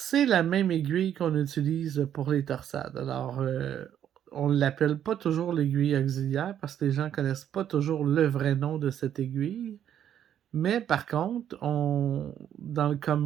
la même aiguille qu'on utilise pour les torsades. Alors, on ne l'appelle pas toujours l'aiguille auxiliaire parce que les gens ne connaissent pas toujours le vrai nom de cette aiguille. Mais par contre, dans le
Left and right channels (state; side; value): quieter; left; 10.0 dB